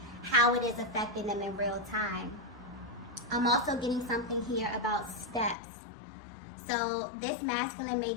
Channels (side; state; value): right; drops out; at 5.6 s